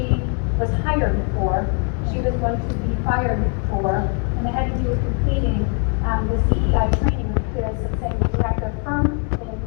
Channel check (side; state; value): right; quieter; 38.7 dB